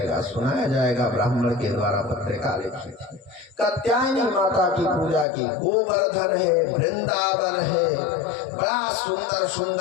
सुनाया जाएगा, ब्राह्मण के द्वारा पत्रिका लिखी थी। कात्यायनी माता की पूजा की। गोवर्धन है, वृंदावन है, बड़ा सुंदर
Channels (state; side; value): drops out; right; at 5.2 s